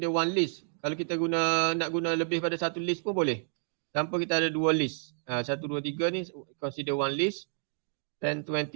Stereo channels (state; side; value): silent; left; digital silence